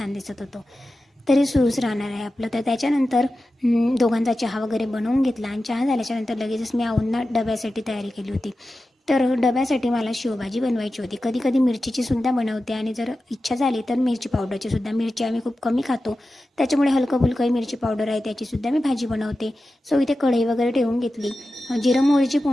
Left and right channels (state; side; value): normal; both; correlation 0.93